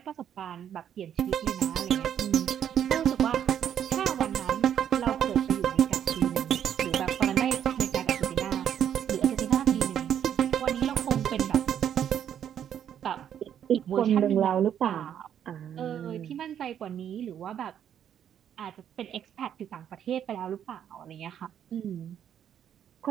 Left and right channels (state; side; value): quieter; left; 9.5 dB